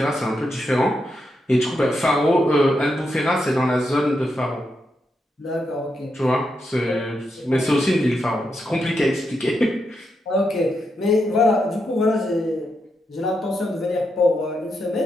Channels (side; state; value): both; normal; correlation 0.84